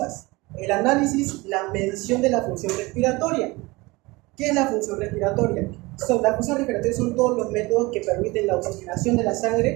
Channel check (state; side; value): quieter; left; 23.0 dB